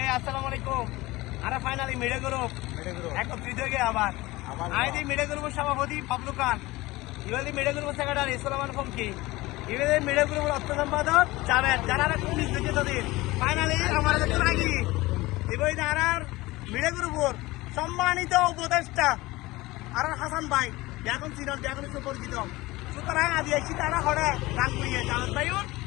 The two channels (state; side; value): quieter; right; 20.1 dB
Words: আসসালামু আলাইকুম। আরে ফাইনালি মিডে গ্রুপ একত্রিত হয়ে গিয়ে আবার আইদি মিডে গ্রুপের সভাপতি বাবলু খান, ইবাদি মিডে গ্রুপের সেক্রেটারি সুলেমান ফমকি, ইবাদি মিডে গ্রুপের অর্থ সম্পাদক জাভেদ, যারা পুলিশ দেখে তাদের ফাইনালি আমার কাছে রাখি এবার আর মিডে গ্রুপের সম্মানিত উপদেষ্টা আর হাসান ভাই এখন সিনিয়র এখন সুপরিচিত। সুতরাং আদি আইসি তারা হরে গান করিয়ে জাভেদ ভাইউর